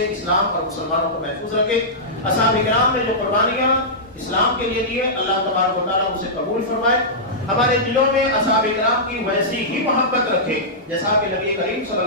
اسلام اور مسلمانوں کو محفوظ رکھے۔ اصحاب کرام نے جو قربانیاں اسلام کے لیے دیے، اللہ تبارک و تعالیٰ اسے قبول فرمائے، ہمارے دلوں میں اصحاب کرام کی ویسی ہی محبت رکھے جیسا کہ نبی کریم صلی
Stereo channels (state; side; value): normal; both; correlation -0.14